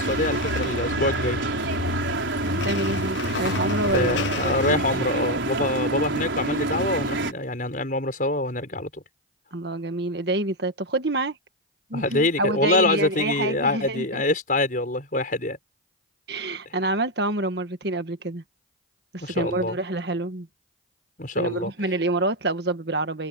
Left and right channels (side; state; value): both; normal; correlation 0.05